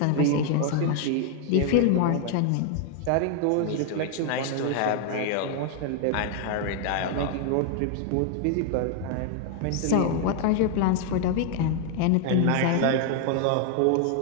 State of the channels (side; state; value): both; different; correlation 0.00